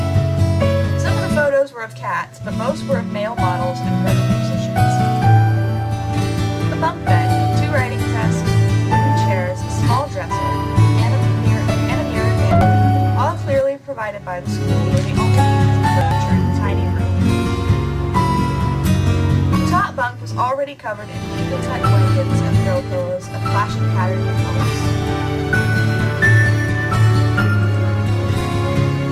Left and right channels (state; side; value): identical; both; correlation 1.00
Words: Some of the photos were of cats, but most were of male models and friendly musicians. The bunk bed, 2 writing desks, wooden chairs, a small dresser, and a mirror vanity, all clearly provided by the school, were the only furniture in the tiny room. The top bunk was already already covered in neatly tucked blankets and throw pillows of flashing patterns and colors.